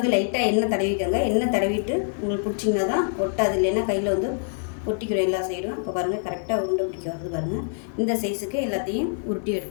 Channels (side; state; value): right; silent; digital silence